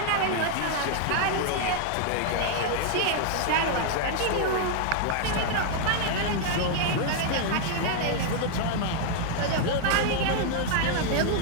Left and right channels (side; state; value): both; different; correlation 0.00